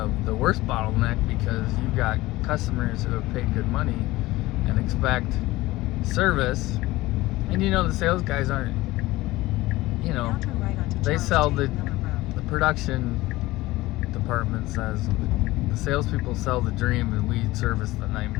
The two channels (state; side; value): quieter; right; 18.7 dB